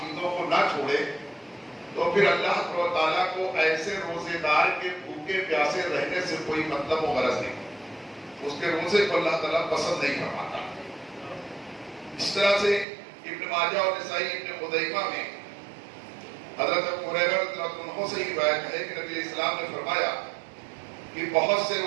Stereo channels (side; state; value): left; drops out; at 12.9 s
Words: کو نہ چھوڑے، تو پھر اللہ تعالیٰ کو ایسے روزے دار کے بھوکے پیاسے رہنے سے کوئی مطلب و غرض نہیں، اس کے روزے کو اللہ تعالیٰ پسند نہیں فرماتا۔ اس طرح سے ابن ماجہ اور نسائی ابن خزیمہ میں حضرت ابو ہریرہ رضی اللہ عنہ سے روایت ہے کہ نبی اسلام نے فرمایا کہ بہت سے